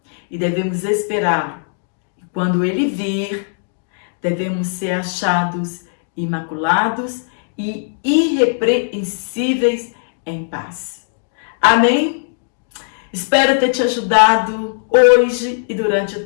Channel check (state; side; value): silent; right; digital silence